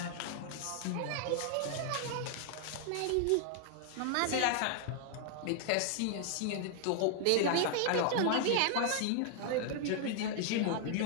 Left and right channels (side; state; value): both; different; correlation 0.00